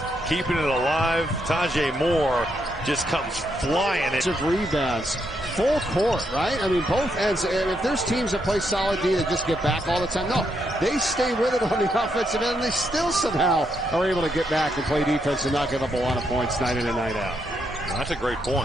keeping it alive. Tajay Moore just comes flying. Rebounds, full court, right? I mean, both ends. And if there's teams that play solid D that just get back all the time, no, they stay with it on the offensive end, and they still somehow are able to get back and play defense and not give up a lot of points night in and night out. Well, that's a great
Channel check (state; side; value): normal; both; correlation 0.79